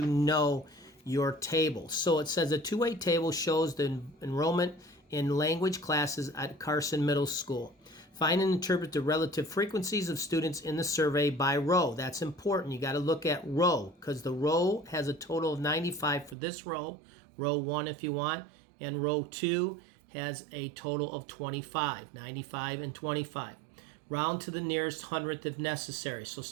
know your table. So it says a two-way table shows the enrollment in language classes at Carson Middle School. Find and interpret the relative frequencies of students in the survey by row. That's important. You got to look at row because the row has a total of 95 for this row 1 if you want, and row 2 has a total of 25, 95 and 25. Round to the nearest hundredth if necessary. So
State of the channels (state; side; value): drops out; left; at 16.4 s